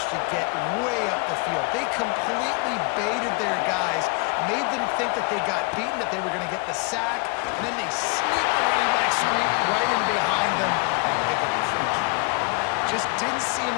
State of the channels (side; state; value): right; quieter; 30.8 dB